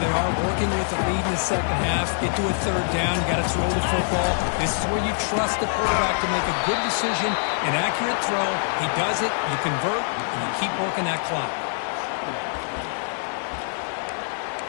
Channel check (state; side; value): silent; right; 62 dB below the other